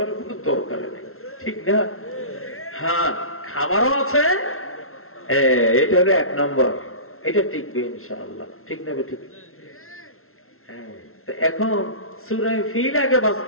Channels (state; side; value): late; right; 0.62 ms